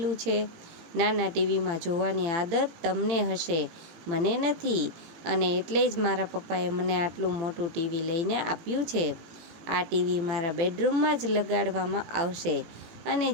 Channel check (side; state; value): left; late; 18 ms